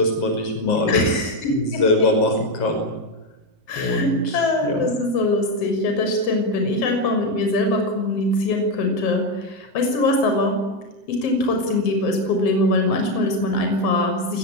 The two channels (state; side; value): late; right; 7.7 ms